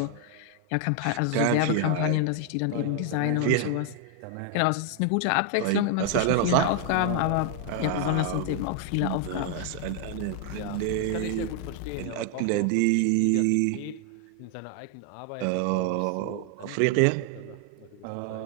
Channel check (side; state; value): both; different; correlation 0.00